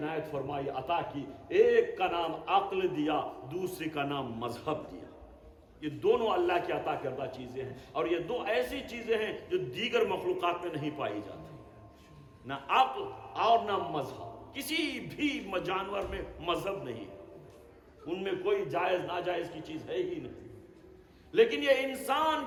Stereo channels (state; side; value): identical; both; correlation 1.00